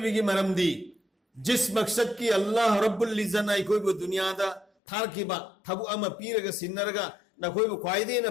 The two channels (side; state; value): right; drops out; at 4.7 s